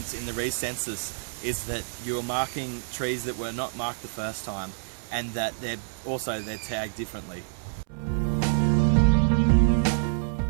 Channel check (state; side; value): silent; left; 60 dB below the other